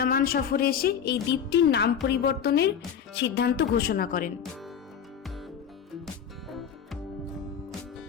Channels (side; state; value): right; quieter; 8.0 dB